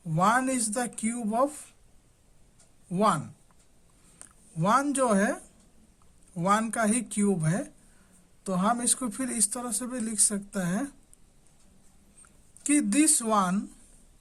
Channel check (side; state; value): both; identical; correlation 1.00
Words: 1 इज द क्यूब ऑफ 1। 1 जो है 1 का ही क्यूब है, तो हम इसको फिर इस तरह से भी लिख सकते हैं कि this 1